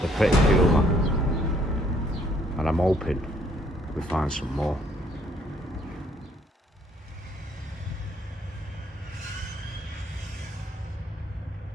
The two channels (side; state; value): both; normal; correlation 0.65